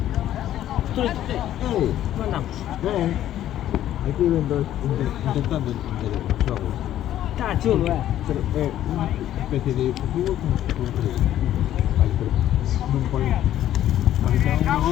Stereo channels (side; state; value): right; quieter; 12.2 dB